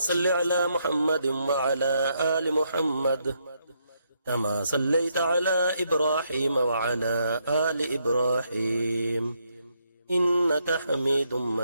على محمد وعلى آل محمد كما صليت على إبراهيم وعلى آل إبراهيم إنك حميد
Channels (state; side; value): inverted; both; correlation -0.76